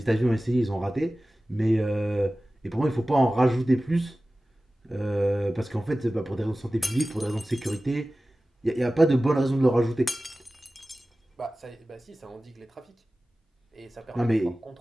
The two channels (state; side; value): normal; both; correlation 0.96